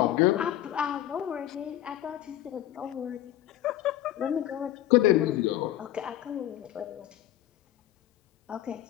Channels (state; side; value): quieter; right; 13.1 dB